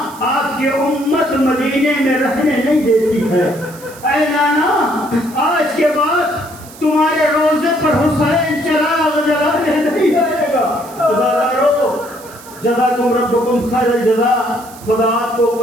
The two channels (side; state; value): right; noise; hiss, 20 dB below the sound